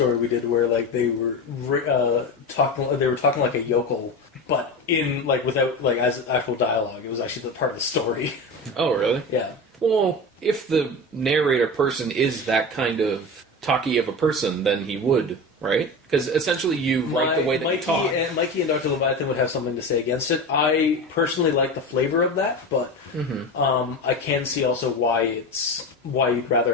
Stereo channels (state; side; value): normal; both; correlation 0.25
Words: we did where like they were talking. They were talking like a yokel, but in like without like as actual dialogue. It was actually the part of the story. Oh, really? Yeah. Well, if the narrator person is that kind of talky of a person, then he would, right? Because essentially you write the way that you talk. Mikey and Dr. Leviathan would have something to say against it. I personally like the flavor of that, but I can see also why you'd rather